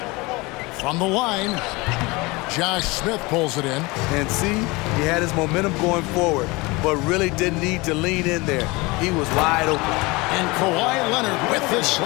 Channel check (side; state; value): right; quieter; 24.1 dB